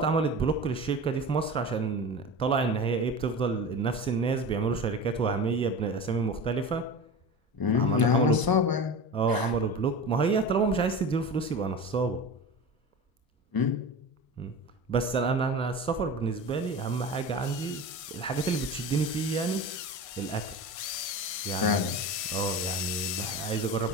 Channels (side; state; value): right; late; 1.5 ms